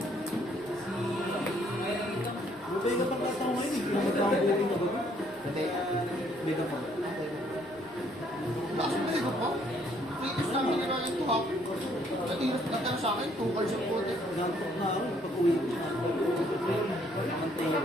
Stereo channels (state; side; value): normal; both; correlation 0.66